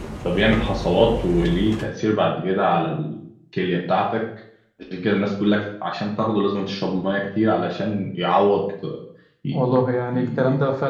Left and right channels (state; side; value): identical; both; correlation 1.00